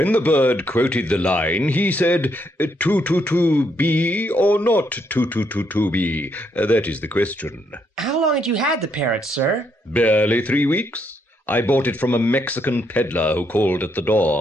the bird quoted the line, he said, "To-to-to-be or not to-to-to-to-be?" That is the question. How long had you had the parrot, sir? Barely 3 weeks. I bought it from a Mexican peddler who called at the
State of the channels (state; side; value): normal; both; correlation 0.75